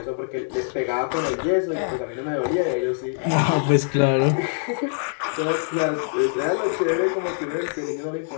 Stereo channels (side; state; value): right; silent; digital silence